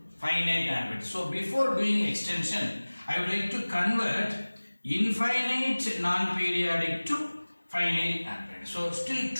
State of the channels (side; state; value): both; inverted; correlation -1.00